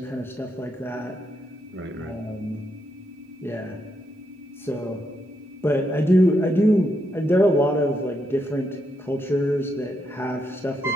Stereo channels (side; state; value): both; normal; correlation 0.80